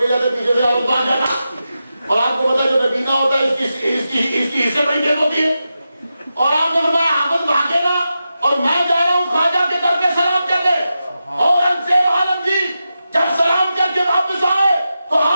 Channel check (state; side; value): inverted; both; correlation -0.90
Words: جاتے پیچھے سے حافظ بھاگ جاتا. اور آپ کو پتا جو نبینا ہوتا ہے اس کی حصے بڑی تیز ہوتی ہے. اور آپ نے فرمایا حافظ بھاگے نہ اور میں جا رہا ہوں خواجہ کے در پہ سلام کر دے. اورنگزیب عالمگیر جب سلام کر کے واپس آئے تو